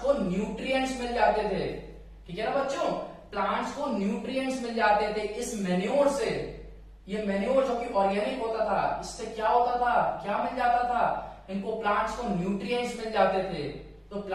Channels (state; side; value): identical; both; correlation 1.00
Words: को न्यूट्रिएंट्स मिल जाते थे, ठीक है ना बच्चों, प्लांट्स को न्यूट्रिएंट्स मिल जाते थे इस मैन्योर से। ये मैन्योर जो कि ऑर्गेनिक होता था, इससे क्या होता था, क्या मिल जाता था, इनको प्लांट्स को न्यूट्रिएंट्स मिल जाते थे। तो